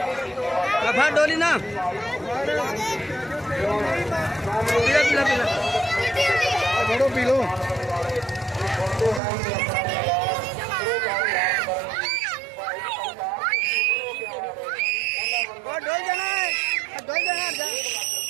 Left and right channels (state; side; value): drops out; left; at 9.2 s